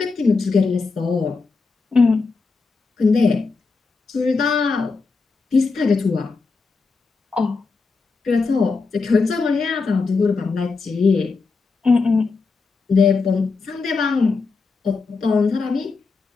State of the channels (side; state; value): right; quieter; 4.3 dB